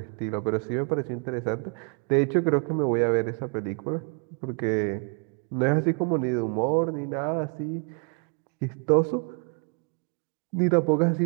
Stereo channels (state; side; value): quieter; left; 36.9 dB